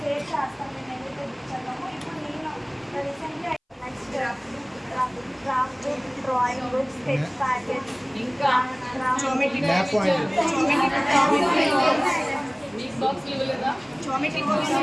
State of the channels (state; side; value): identical; both; correlation 1.00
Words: చేస్తాం. మేము ఏదైతే బుక్ చదివామో ఇప్పుడు నేను రీసెంట్గా next craft book, drawing book, sketch packet, ఇంకా జామెట్రీ మీకు బాక్స్లు ఇవ్వలేదా?